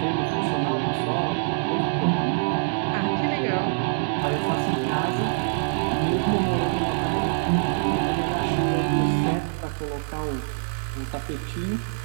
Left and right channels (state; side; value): silent; left; digital silence